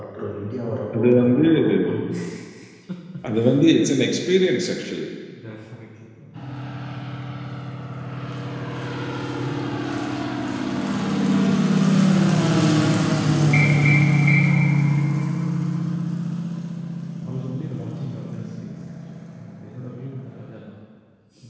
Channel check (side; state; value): both; identical; correlation 1.00